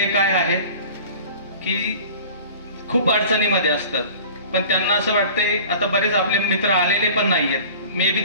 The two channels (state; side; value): inverted; both; correlation -0.42